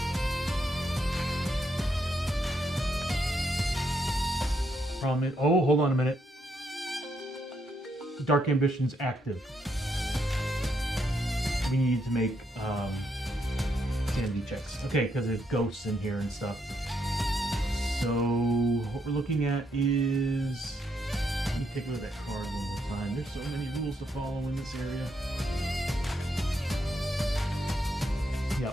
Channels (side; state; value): both; normal; correlation 0.77